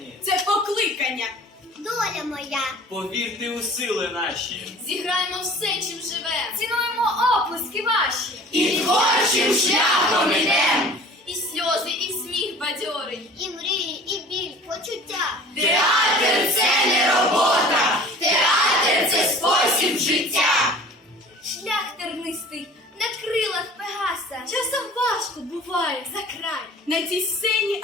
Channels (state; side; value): normal; both; correlation 0.45